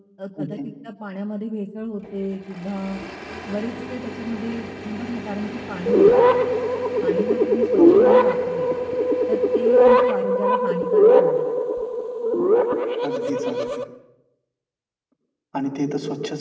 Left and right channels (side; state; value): both; identical; correlation 1.00